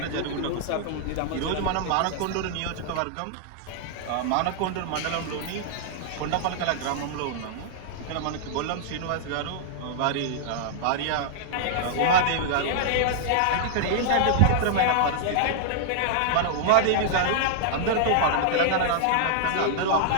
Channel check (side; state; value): both; different; correlation -0.01